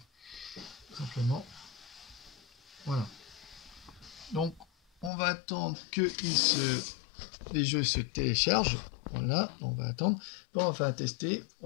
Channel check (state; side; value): drops out; right; at 5.1 s